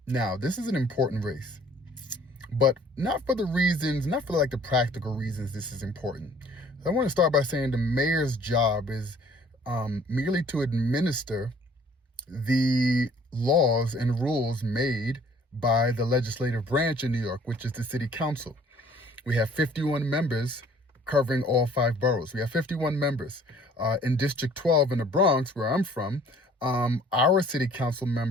this is an important race, but not for like the practical reasons this is important. I want to start by saying the mayor's job is merely to administer the laws and rules made by the legislative branch in New York, which is the city council. We have 51 members covering all 5 boroughs. We have 51 members. In District 12 in the Bronx, where I'm from, our city council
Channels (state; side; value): normal; both; correlation 0.55